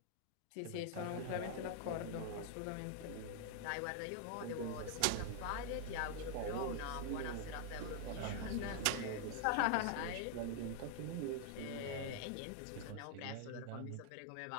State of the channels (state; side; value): different; both; correlation 0.00